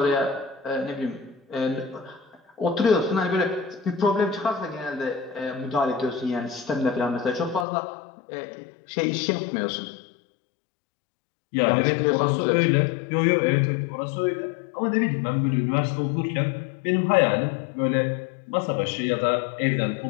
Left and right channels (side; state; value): right; drops out; at 7.7 s